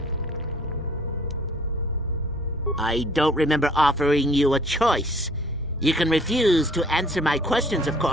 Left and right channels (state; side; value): normal; both; correlation 0.55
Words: I don't remember offering you a choice. You can refuse to answer my questions, of